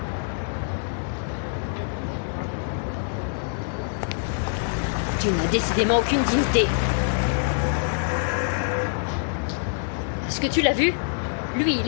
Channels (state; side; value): silent; right; digital silence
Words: Tu n'as décidément aucune dignité. Est-ce que tu l'as vu? Lui, il